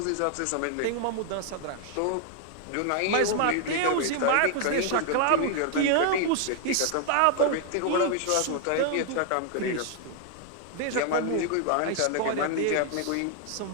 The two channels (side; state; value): both; different; correlation 0.00